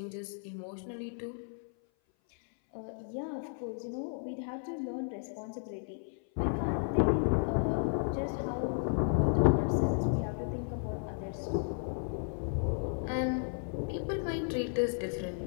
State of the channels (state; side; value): silent; right; 55 dB below the other